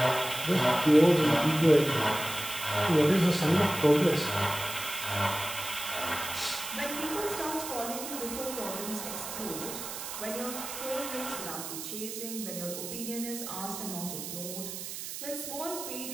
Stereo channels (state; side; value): noise; right; hiss, 8 dB below the sound